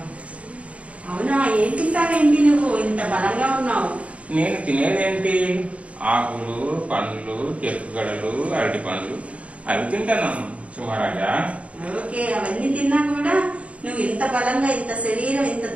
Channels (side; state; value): left; late; 0.064 ms